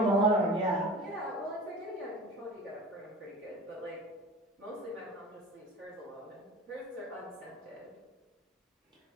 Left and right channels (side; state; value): both; normal; correlation 0.37